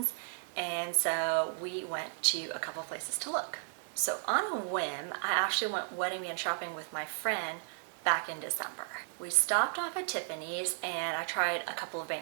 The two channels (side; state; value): left; silent; digital silence